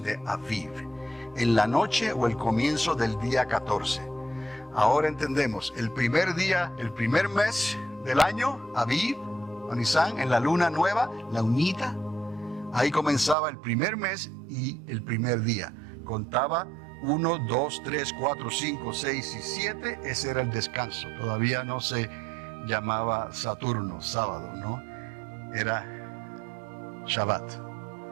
Aviv, en la noche o el comienzo del día 14. Ahora entendemos, el primer día, el primer mes del año, Aviv o Nisan, en la luna nueva, la unita, ahí comenzaba el primer mes y el primer día. Contaba 1, 2, 3, 4, 5, 6 y 7, ese era el descanso. Todavía no se llamaba Saturno, sábado, ¿no? Era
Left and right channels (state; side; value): drops out; left; at 13.4 s